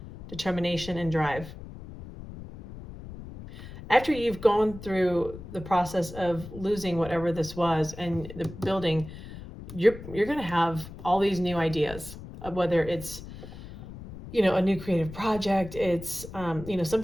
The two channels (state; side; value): noise; left; rumble, 13 dB below the sound